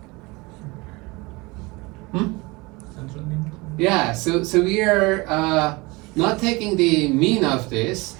yeah, so we are not taking the mean of this,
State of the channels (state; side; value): quieter; left; 24.5 dB